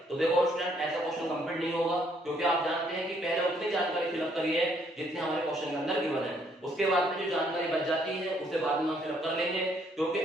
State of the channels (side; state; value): both; normal; correlation 0.68